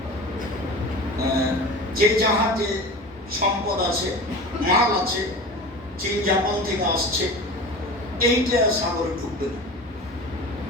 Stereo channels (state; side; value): normal; both; correlation 0.34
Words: যে জাহাজে সম্পদ আছে, মাল আছে, চীন জাপান থেকে আসছে, এইটা সাগরে ঢুকবে না।